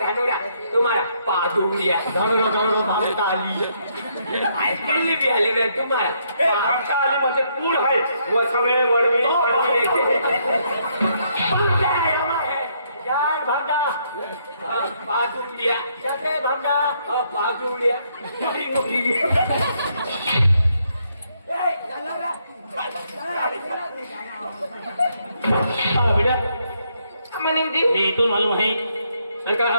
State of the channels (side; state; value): both; inverted; correlation -0.73